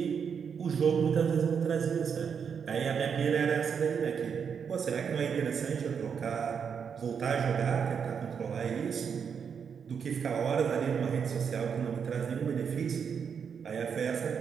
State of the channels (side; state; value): left; quieter; 6.9 dB